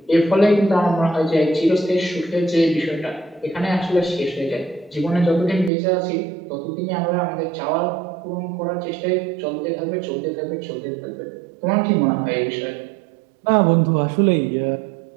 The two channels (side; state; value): left; drops out; at 5.7 s